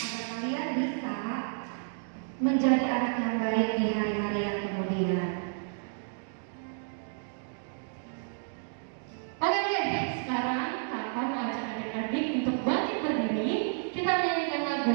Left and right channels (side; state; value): left; silent; 57 dB below the other